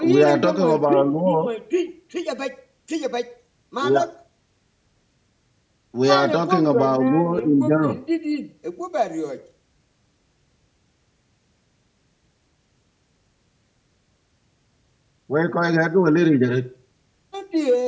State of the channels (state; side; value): identical; both; correlation 1.00